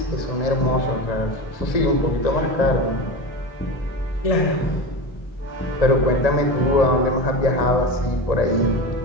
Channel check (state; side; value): late; right; 1.8 ms